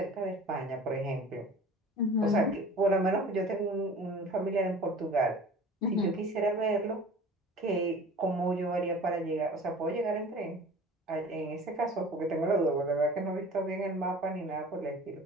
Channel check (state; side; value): normal; both; correlation 0.42